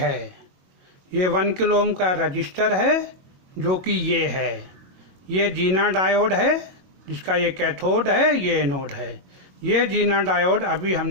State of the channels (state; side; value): late; left; 22 ms